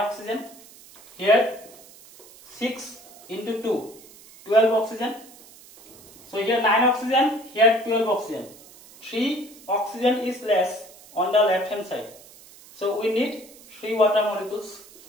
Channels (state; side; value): noise; right; hiss, 22 dB below the sound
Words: Here 6 into 2, 12 oxygen. So here 9 oxygen, here 12 oxygen. 3 oxygen is less on the left hand side. So we need 3 water molecules.